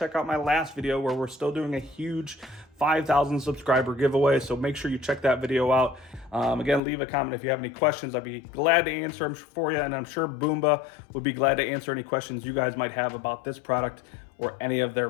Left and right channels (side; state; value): right; drops out; at 6.8 s